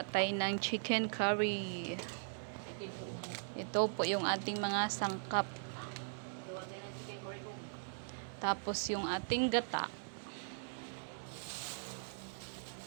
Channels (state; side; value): silent; left; 51 dB below the other